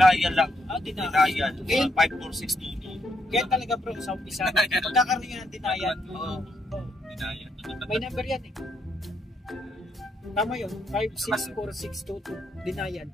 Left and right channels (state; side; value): normal; both; correlation 0.76